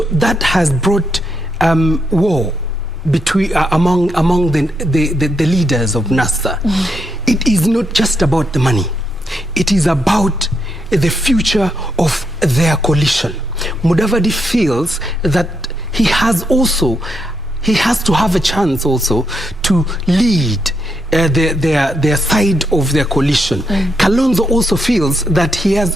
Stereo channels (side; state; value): both; normal; correlation 0.80